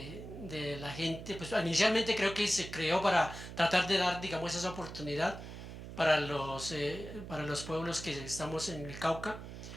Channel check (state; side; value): noise; right; hum, 11 dB below the sound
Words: la gente. Pues inicialmente creo que se creó para tratar de dar, digamos, esa oportunidad para los pueblos que estamos en el Cauca,